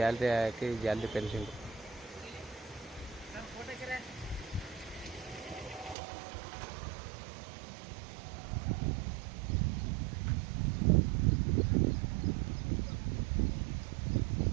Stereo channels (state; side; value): drops out; left; at 6.0 s